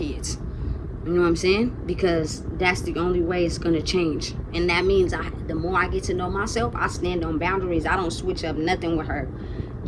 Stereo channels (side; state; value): both; identical; correlation 1.00